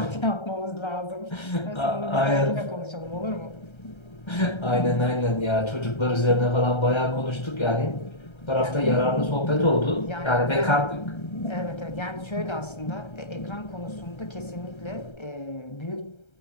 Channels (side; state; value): right; late; 1.3 ms